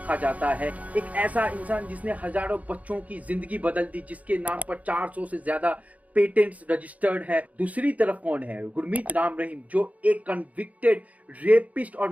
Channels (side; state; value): left; late; 0.071 ms